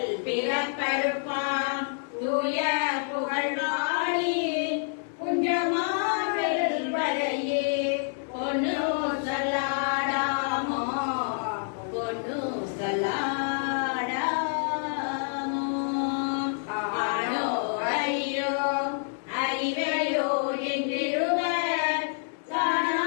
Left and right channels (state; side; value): silent; right; digital silence